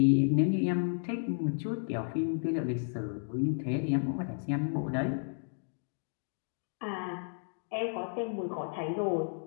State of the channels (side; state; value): right; silent; digital silence